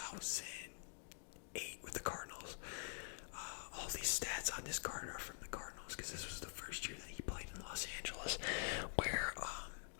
with the Cardinals. All these stats on this card are from the Cardinals because this was the first year that he played in Los Angeles, where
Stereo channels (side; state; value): right; silent; digital silence